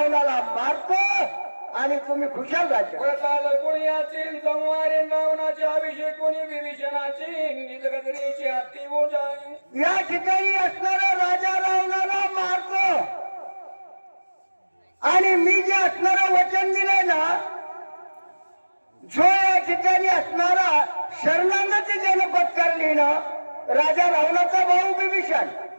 मारतो आणि तुम्ही खुशाल राजा। कोणी याची संवारे रावणाचे अभिषेक कोणी विभीषणाची निजगदरीची हाती बोजाय। या ठिकाणी असणारा राजा रावणाला मारतो आणि मी जे असणारा वचन दिलंय ना, जो या ठिकाणी असणारा शरणागती ज्यानं पत्करली ना, राजा रावणाचा भाऊ विभीषण,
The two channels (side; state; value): both; inverted; correlation -1.00